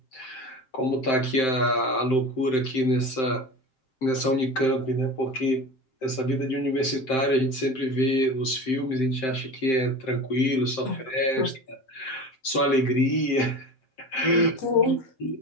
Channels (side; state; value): right; late; 7.7 ms